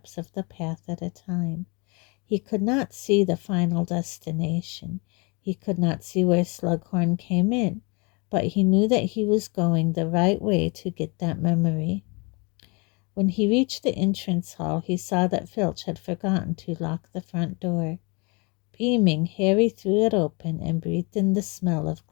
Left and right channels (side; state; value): right; quieter; 30.1 dB